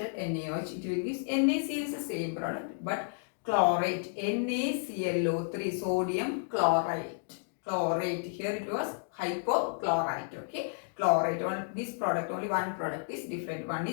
NaOH, it will give NaCl is the same product, but chlorate, NaClO3, sodium chlorite. Chlorate, here it was hypochlorite. Okay, chlorate, this product, only one product is different. One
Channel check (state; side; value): silent; right; digital silence